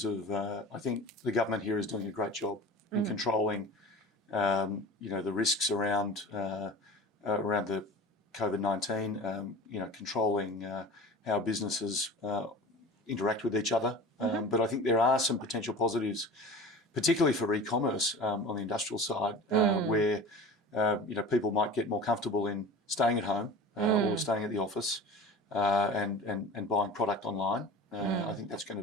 of I think the government here is doing a great job in controlling, the risks around the COVID-19, controlling how businesses interact with each other. But I think there are some potential positives, particularly for e-commerce on the industrial side, where people might get more comfortable in staying at home or staying at the office and buying product online. I think that's going to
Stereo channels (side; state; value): both; normal; correlation 0.37